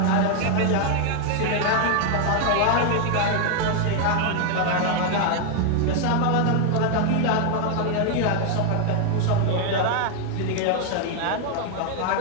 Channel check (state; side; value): different; both; correlation 0.00